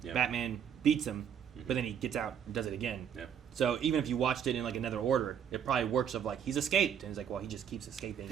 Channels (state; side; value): quieter; left; 8.4 dB